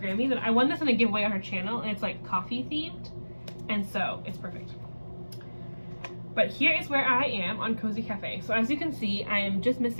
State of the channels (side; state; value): both; inverted; correlation -1.00